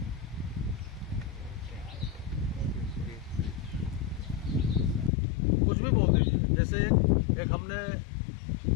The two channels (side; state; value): right; drops out; at 5.1 s